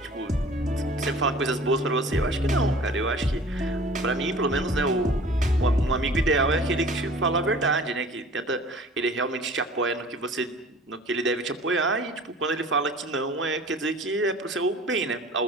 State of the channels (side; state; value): both; normal; correlation 0.46